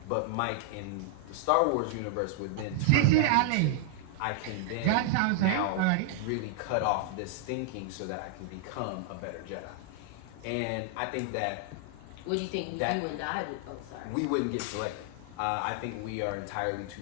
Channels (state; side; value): different; both; correlation 0.00